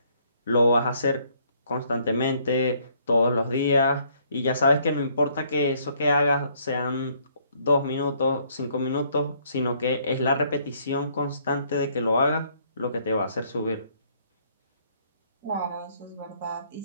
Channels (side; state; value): both; inverted; correlation -0.66